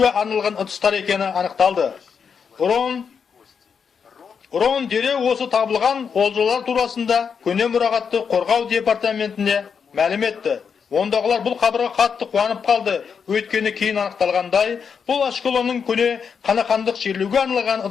арналған ыдыстар екені анықталды. Рон дереу осы табылған олжалар турасында көне мұрағатты қорғау департаментіне мәлім етті. Ондағылар бұл хабарға қатты қуанып қалды. Өйткені кейін анықталғандай, бұл Ашкелонның көне қанақандық жерлеуге арналған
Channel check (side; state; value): right; quieter; 6.5 dB